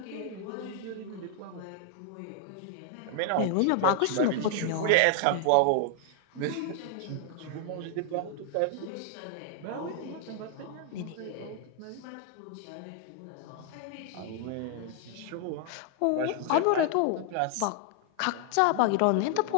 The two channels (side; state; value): both; different; correlation 0.00